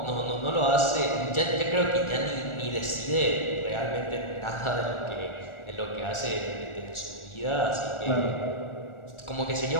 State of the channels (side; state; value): right; late; 1.4 ms